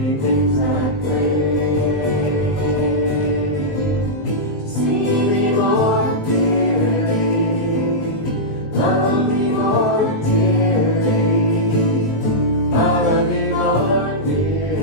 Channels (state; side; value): late; right; 19 ms